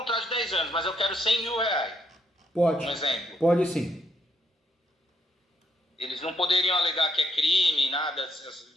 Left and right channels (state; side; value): normal; both; correlation 0.73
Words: de 10 anos, mas eu quero 100 mil reais. Pode. Um exemplo. Pode sim. Eles não poderiam alegar que é crime, nada,